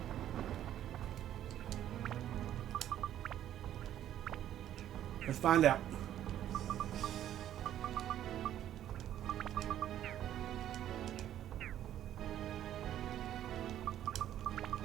Let's find out.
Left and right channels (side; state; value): left; quieter; 11.5 dB